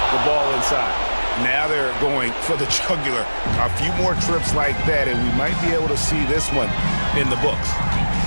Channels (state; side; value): inverted; both; correlation -1.00